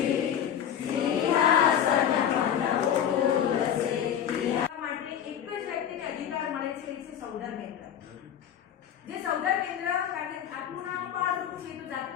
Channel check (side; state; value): right; quieter; 9.4 dB